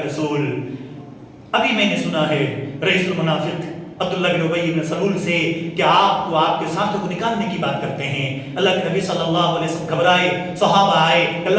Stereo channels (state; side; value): identical; both; correlation 1.00